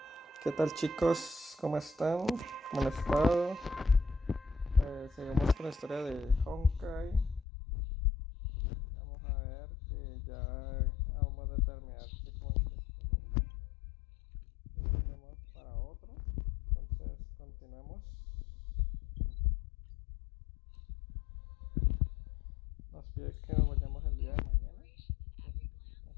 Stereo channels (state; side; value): drops out; right; at 7.5 s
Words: ¿qué tal chicos? ¿Cómo están? ¿Cómo han estado? Seguimos con la historia de Honkai. Vamos a ver que ya vamos a determinar qué con este mundo y tenemos para otro. Entonces continuemos. Nos pide que nos vayamos el día de mañana,